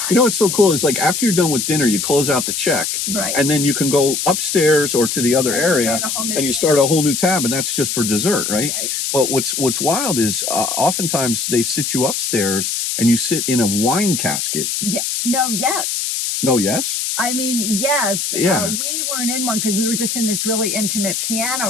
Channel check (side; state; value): left; noise; hiss, 1 dB below the sound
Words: You know what's so cool is like after you're done with dinner, you close out the check, Right. and then you can go upstairs or to the other And you area, start a whole new and you tab. start a whole new tab, and that's just for dessert, right? Right. But what's wild is oftentimes they sit you upstairs and you sit in a wine casket. Yeah. No, yes. No, yes. I mean, yes. Yeah. We weren't in one because we were just in this really intimate